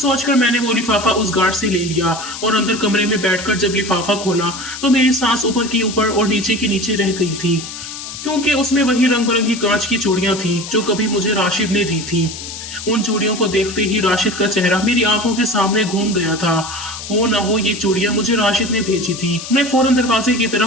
मैंने वो लिफाफा उस गार्ड से ले लिया और अंदर कमरे में बैठकर जब लिफाफा खोला तो मेरी सांस ऊपर की ऊपर और नीचे की नीचे रह गई थी, क्योंकि उसमें वही रंग बिरंगी कांच की चूड़ियां थीं जो कभी मुझे राशिद ने दी थी। उन चूड़ियों को देखते ही राशिद का चेहरा मेरी आंखों के सामने घूम गया था। हो ना हो ये चूड़ियां मुझे राशिद ने भेजी थी। मैं फौरन दरवाजे की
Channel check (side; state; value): left; noise; hiss, 10 dB below the sound